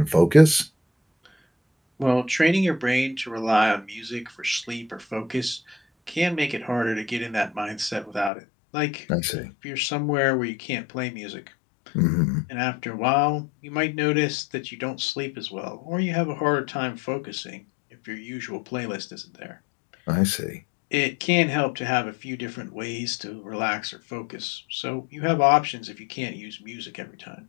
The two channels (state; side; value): drops out; right; at 8.3 s